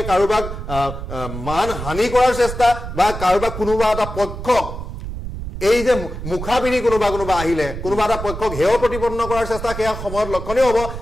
কাৰোবাক মান হানি কৰাৰ চেষ্টা বা কাৰোবাক কোনোবা এটা পক্ষক এই যে মুখা পিন্ধি কোনোবা আহিলে কোনোবা এটা পক্ষক হেয় প্ৰতিপন্ন কৰাৰ চেষ্টা, সেয়া সময়ত লক্ষণীয় হ'ব।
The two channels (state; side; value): noise; right; rumble, 8 dB below the sound